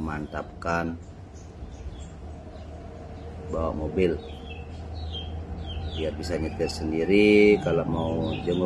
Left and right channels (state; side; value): identical; both; correlation 1.00